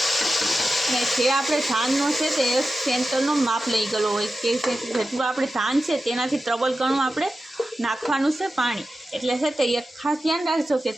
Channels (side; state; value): both; normal; correlation 0.92